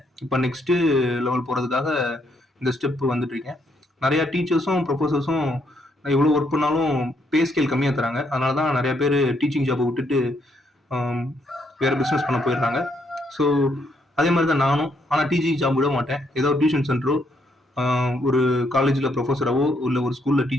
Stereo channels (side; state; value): both; normal; correlation 0.74